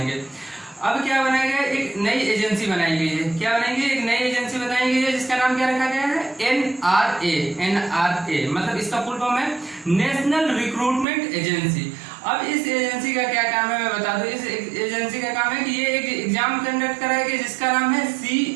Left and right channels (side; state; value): left; drops out; at 11.1 s